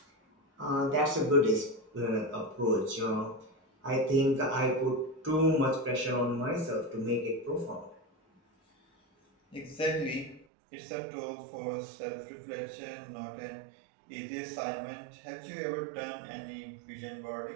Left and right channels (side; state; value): left; drops out; at 10.5 s